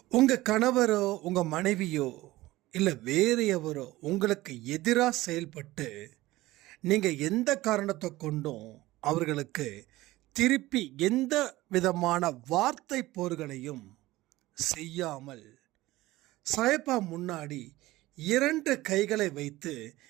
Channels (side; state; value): left; quieter; 17.9 dB